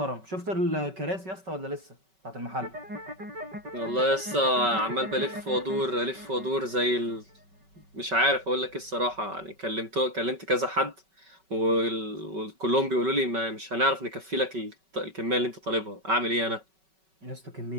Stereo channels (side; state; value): left; late; 5.3 ms